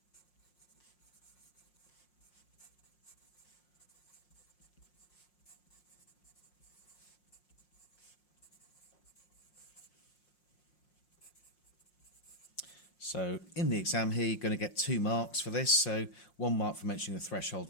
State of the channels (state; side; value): late; right; 5.6 ms